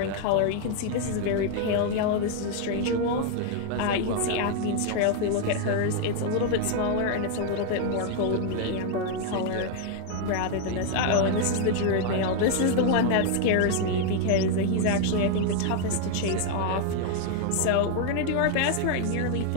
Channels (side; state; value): both; different; correlation 0.00